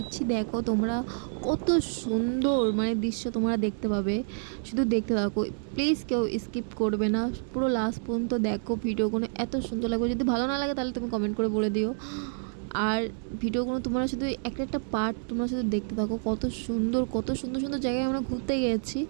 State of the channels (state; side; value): silent; left; digital silence